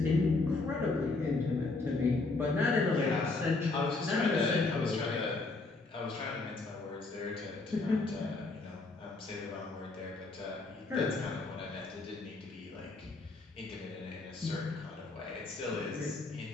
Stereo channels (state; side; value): quieter; right; 3.5 dB